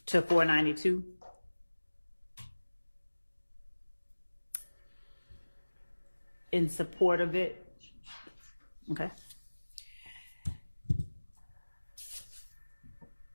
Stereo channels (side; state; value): both; inverted; correlation -1.00